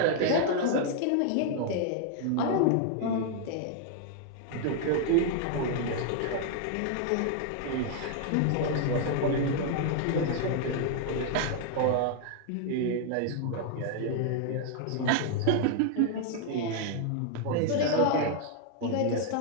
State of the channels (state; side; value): different; both; correlation 0.00